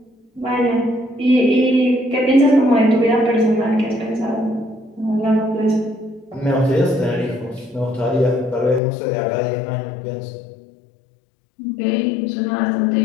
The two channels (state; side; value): drops out; right; at 8.8 s